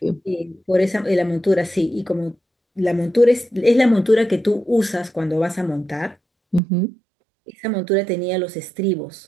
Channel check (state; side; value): drops out; left; at 6.6 s